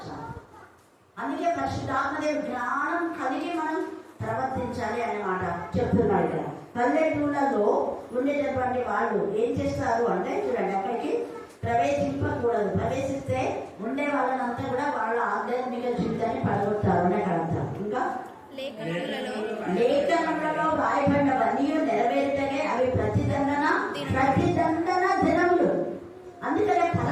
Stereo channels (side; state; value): both; identical; correlation 1.00